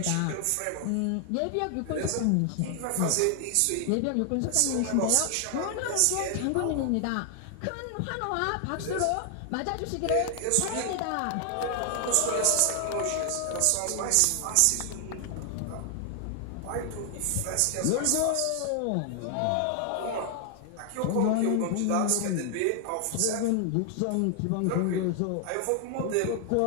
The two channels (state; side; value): different; both; correlation 0.00